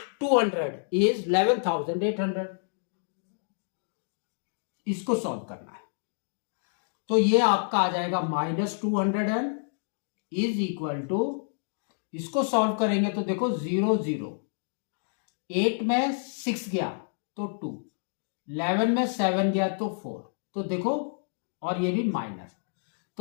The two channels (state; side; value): silent; right; digital silence